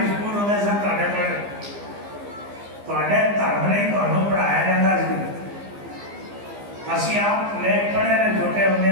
स्कूल होते सन धर्म नहीं पढ़ाया जाता सी। असी आप लेख पढ़े ने छोटे होंगे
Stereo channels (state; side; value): late; left; 15 ms